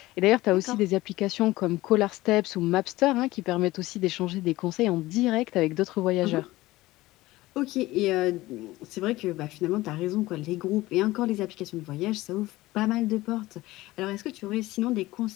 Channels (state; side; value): quieter; right; 18.4 dB